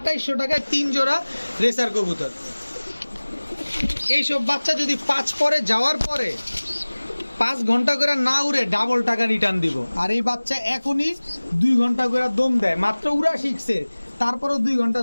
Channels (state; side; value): inverted; both; correlation -1.00